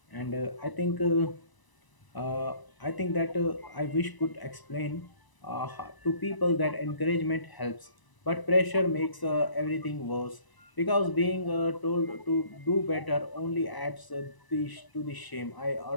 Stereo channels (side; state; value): right; late; 1.0 ms